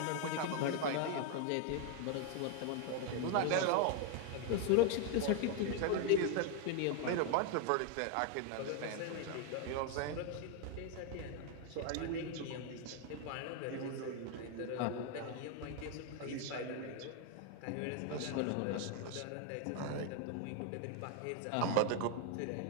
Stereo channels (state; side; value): different; both; correlation 0.01